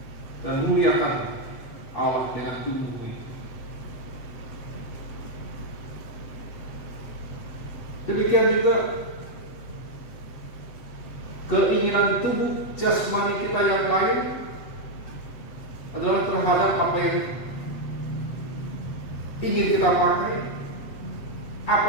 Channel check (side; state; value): right; late; 8.0 ms